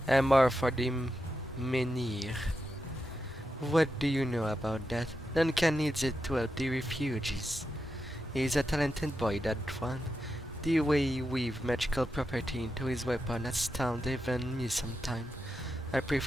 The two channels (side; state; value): both; normal; correlation 0.87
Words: Amor for the Menhir. What do you know about that? Duncan needs it to help the refugees. He's a talented boy, that one. The way he weaves magical property into his weapon astounds even me sometime. I